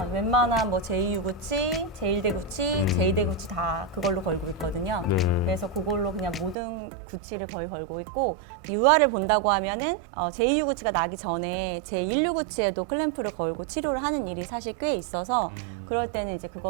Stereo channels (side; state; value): left; drops out; at 6.6 s